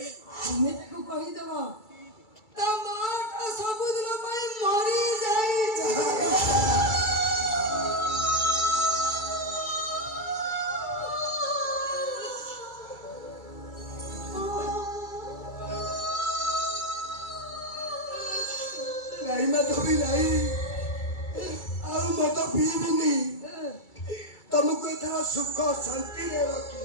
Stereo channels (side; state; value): right; late; 2.3 ms